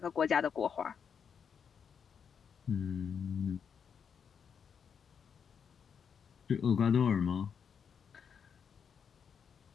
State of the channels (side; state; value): right; quieter; 7.0 dB